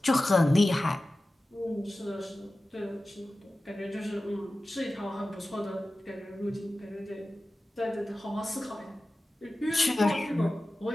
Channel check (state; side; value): normal; both; correlation 0.95